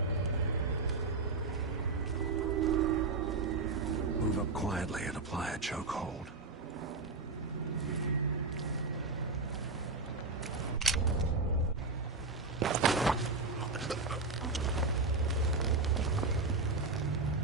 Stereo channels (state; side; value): quieter; left; 3.8 dB